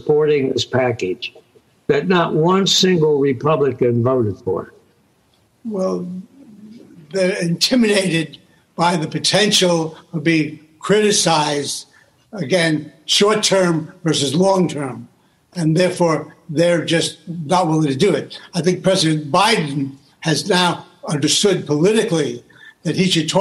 this package, that not one single Republican voted for it? Well, they're intimidated by the potential of being criticized, again, short-term versus long-term, and therefore they're just not willing to do it. I think President Biden has now understood politically that he should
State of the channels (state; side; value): identical; both; correlation 1.00